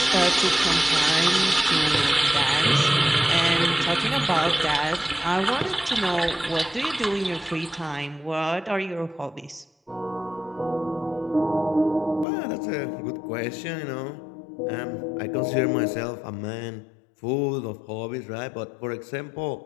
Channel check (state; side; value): drops out; right; at 12.2 s